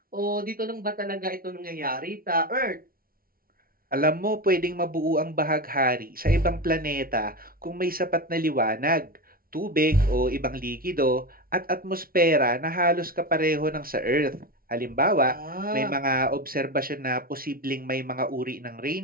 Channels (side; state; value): left; late; 0.43 ms